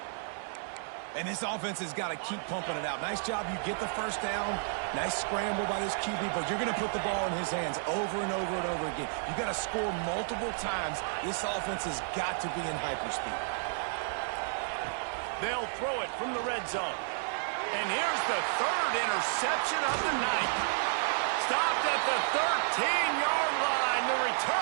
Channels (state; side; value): silent; left; 57 dB below the other